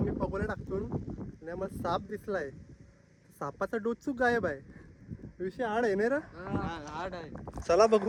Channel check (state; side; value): identical; both; correlation 1.00